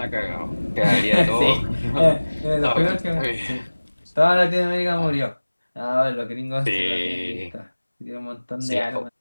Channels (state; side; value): inverted; both; correlation -1.00